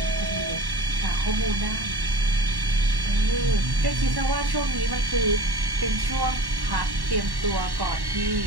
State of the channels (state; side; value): late; left; 1.1 ms